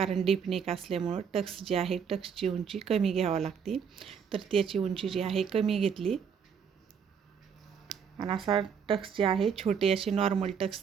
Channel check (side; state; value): left; quieter; 7.0 dB